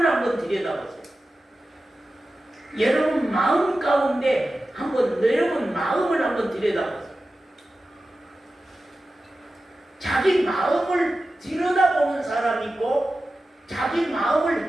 한번 들여다보세요. 여러분 마음 가운데 여러분 마음을 한번 들여다보세요. 자기 마음을 들여다보는 사람이 있고 자기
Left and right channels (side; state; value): both; normal; correlation 0.94